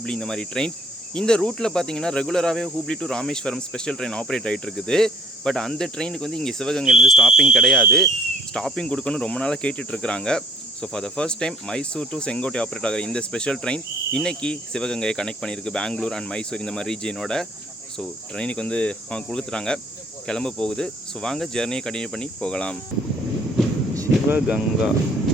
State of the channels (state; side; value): normal; both; correlation 0.56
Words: இந்த மாதிரி ட்ரெயின். இந்த ரூட்டில் பார்த்தீங்கன்னா ரெகுலராகவே Hubli to Rameswaram special train operate ஆகிட்டு இருக்குது. பட் அந்த ட்ரெயினுக்கு வந்து இங்கே சிவகங்கையிலேருந்து ஸ்டாப்பிங் கிடையாது. ஸ்டாப்பிங் கொடுக்கணும்னு ரொம்ப நாளாக கேட்டுட்ருக்குறாங்க. So for the first time Mysore to Sengottai operate ஆகிற இந்த ஸ்பெஷல் ட்ரெயின் இன்றைக்கி சிவகங்கையை கனெக்ட் பண்ணியிருக்கு பெங்களூர் அண்ட் மைசூர் இந்த மாதிரி ரீஜியனோட. ஸோ ட்ரெயினுக்கு வந்து அவங்க கொடுத்துட்றாங்க, கிளம்ப போகுது. ஸோ வாங்க ஜெர்னியை கண்டினியூ பண்ணி போகலாம். சிவகங்கா